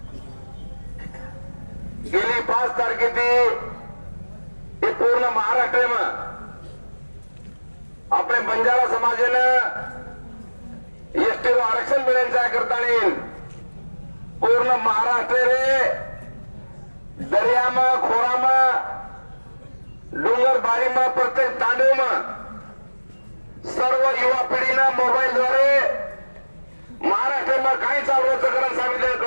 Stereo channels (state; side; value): inverted; both; correlation -1.00